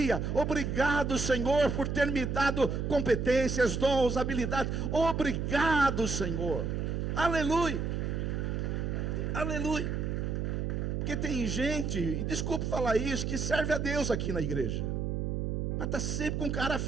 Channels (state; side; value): noise; right; hum, 1 dB below the sound